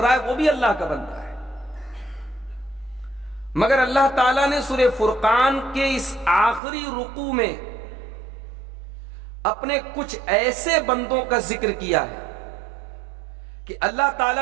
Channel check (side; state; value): left; drops out; at 6.6 s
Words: ہے وہ بھی اللہ کا بندہ ہے۔ مگر اللہ تعالیٰ نے سورہ فرقان کے اس آخری رکوع میں اپنے کچھ ایسے بندوں کا ذکر کیا ہے کہ اللہ